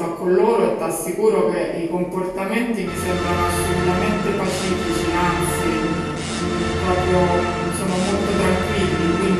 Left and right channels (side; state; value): both; identical; correlation 1.00